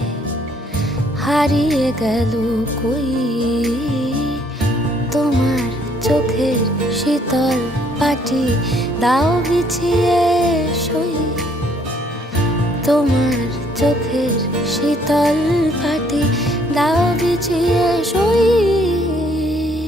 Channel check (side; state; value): both; normal; correlation 0.65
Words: হারিয়ে গেল কই, তোমার চোখের শীতল পাটি দাও বিছিয়ে শুই, তোমার চোখের শীতল পাটি দাও বিছিয়ে শুই।